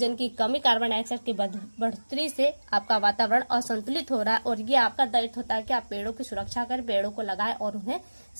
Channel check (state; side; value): inverted; both; correlation -1.00